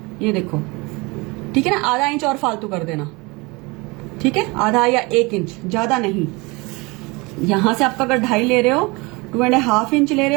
ये देखो, ठीक है ना। आधा इंच और फालतू कर देना, ठीक है, आधा या 1 इंच, ज्यादा नहीं। यहां से आपका अगर 2.5 ले रहे हो, 2.5 इंच ले रहे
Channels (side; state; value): left; quieter; 25.8 dB